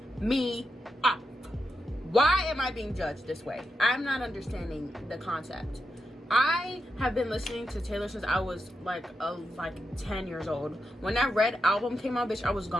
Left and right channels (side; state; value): both; normal; correlation 0.87